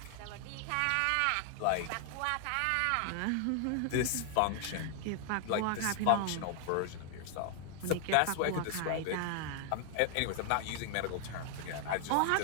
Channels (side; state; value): both; different; correlation 0.00